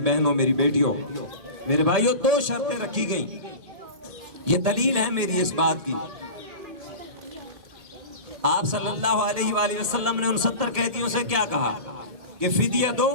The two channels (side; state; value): left; late; 1.8 ms